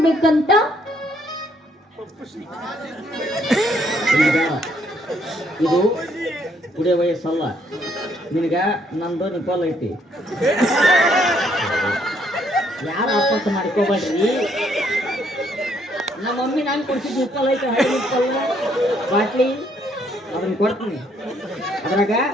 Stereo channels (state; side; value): normal; both; correlation 0.69